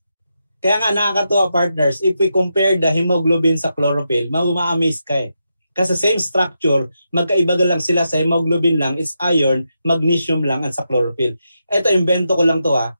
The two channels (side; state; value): both; inverted; correlation -0.85